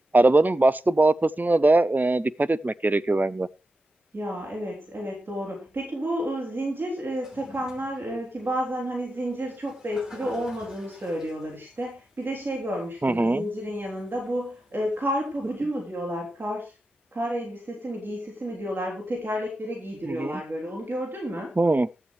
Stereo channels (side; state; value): both; normal; correlation 0.90